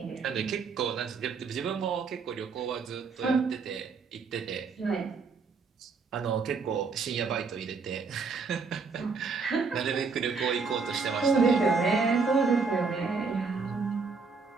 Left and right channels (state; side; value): quieter; left; 4.8 dB